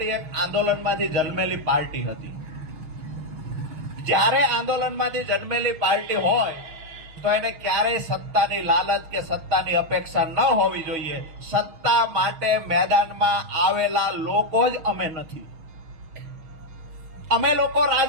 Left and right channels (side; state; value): left; late; 6.4 ms